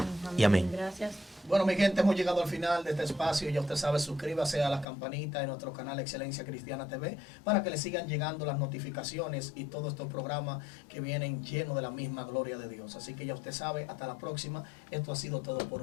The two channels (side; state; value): right; drops out; at 4.9 s